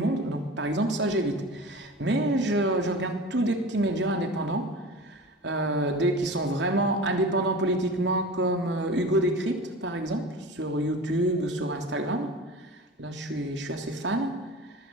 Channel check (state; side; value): normal; both; correlation 0.35